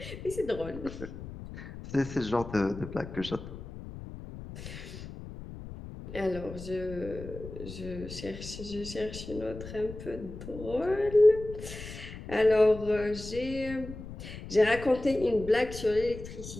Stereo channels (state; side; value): noise; left; rumble, 12 dB below the sound